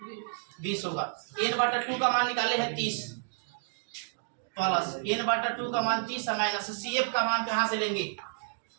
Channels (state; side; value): silent; left; digital silence